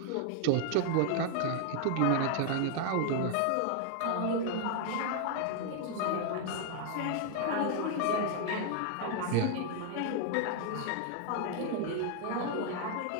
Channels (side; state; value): both; different; correlation 0.00